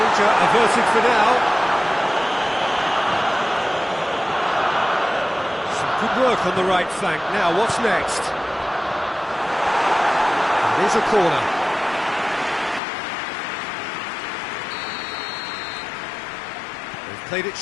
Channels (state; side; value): drops out; right; at 12.8 s